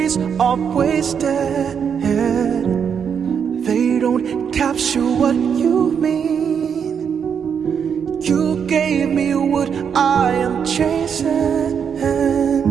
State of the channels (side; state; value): left; quieter; 7.3 dB